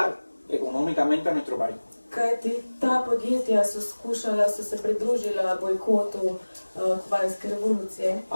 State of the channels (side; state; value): both; inverted; correlation -1.00